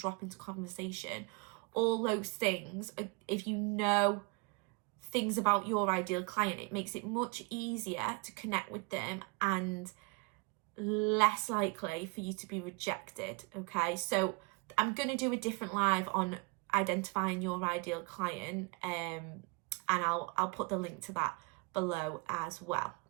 into conversation. All those things, if you know things about your ideal client, it makes it much easier to connect with them and less likely for you to be rejected. Okay, so I'm going to do a different live on identifying your ideal client, and I'll put the link to that below as well.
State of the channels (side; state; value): left; quieter; 29.4 dB